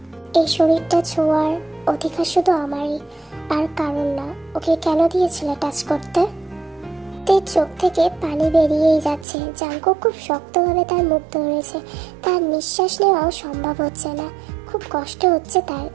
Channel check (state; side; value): drops out; left; at 9.2 s